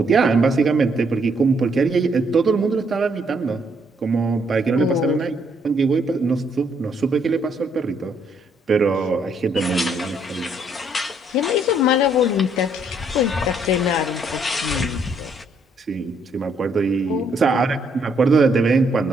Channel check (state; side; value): normal; both; correlation 0.70